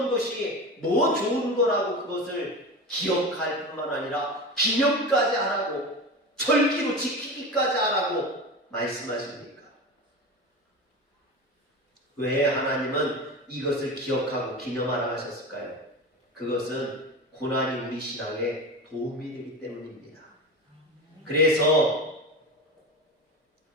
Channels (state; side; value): normal; both; correlation 0.27